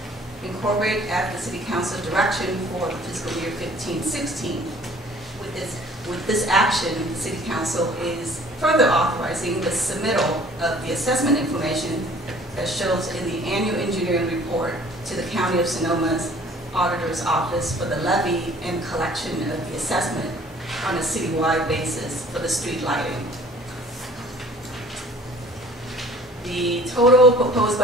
incorporated at the City Council direction for the fiscal year 15-16. With this action, the City Council is further authorizing the submittal of the assessment information that shows in the annual engineering report to the County of Sonoma's Auditor's Office for the levy and collection of the assessment on a citywide basis for the street lighting. The total proposed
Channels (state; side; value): normal; both; correlation 0.52